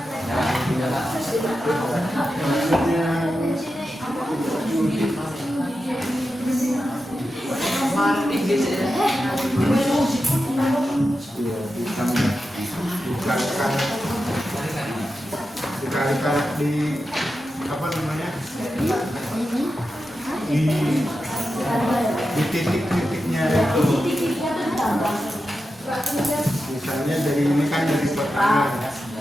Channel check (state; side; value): normal; both; correlation 0.90